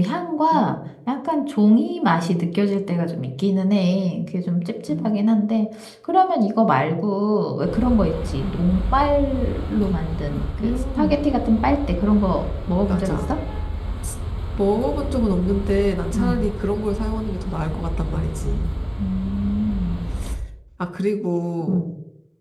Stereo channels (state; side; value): identical; both; correlation 1.00